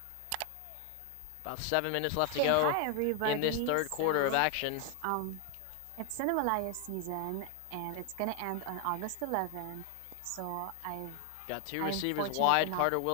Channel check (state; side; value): different; both; correlation 0.00